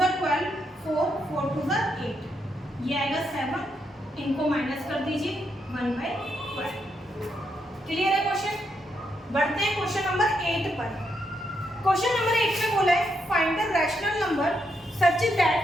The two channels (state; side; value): normal; both; correlation 0.79